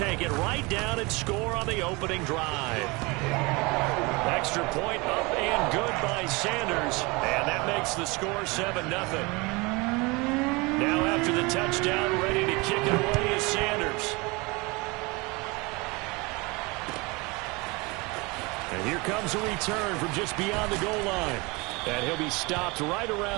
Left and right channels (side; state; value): left; quieter; 25.9 dB